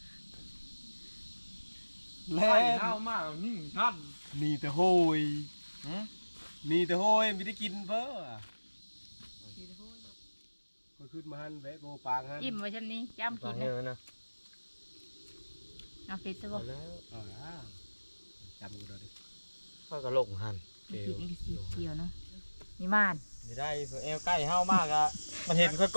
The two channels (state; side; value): inverted; both; correlation -1.00